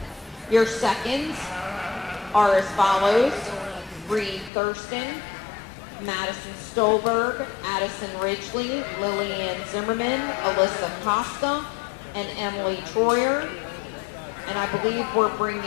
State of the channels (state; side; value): drops out; right; at 4.5 s